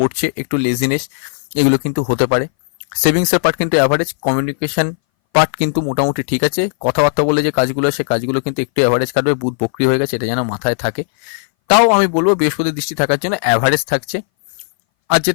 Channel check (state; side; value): silent; right; 62 dB below the other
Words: একটু লেজিনেস এগুলো কিন্তু হতে পারে। সেভিংসের পার্ট কিন্তু অ্যাভারেজ, কমিউনিকেশন পার্ট কিন্তু মোটামুটি ঠিক আছে। কথাবার্তা বলে যে কাজগুলো, সে কাজগুলো কিন্তু একটু অ্যাভারেজ কাটবে, বুধ বক্রি হয়ে গেছে, এটা যেন মাথায় থাকে। তাও আমি বলবো বৃহস্পতির দৃষ্টি থাকার জন্য অ্যাভারেজ থাকছে। আর